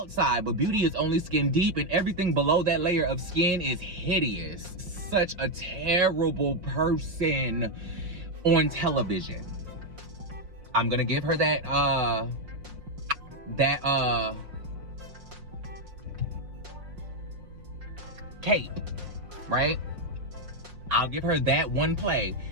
but beauty is only skin deep, and everything below that layer of skin is hideous. Such a terrible person on television. I'm gonna give her that cape, right? I'll give her that one play,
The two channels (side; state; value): left; late; 5.6 ms